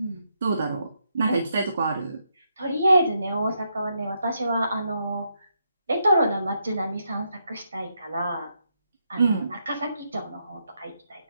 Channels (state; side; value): inverted; both; correlation -0.80